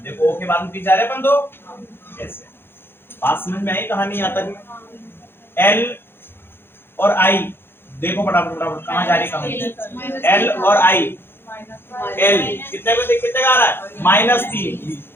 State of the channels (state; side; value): late; right; 0.11 ms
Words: देखो ओ के बाद में पीछे जा रहे अपन 2, ऐसे। बात समझ में आई कहानी? यहाँ तक एल और आई देखो फटाफट फटाफट कहाँ जा रही कहानी? एल और आई, एल कितने पे कितने का आ रहा है? -3।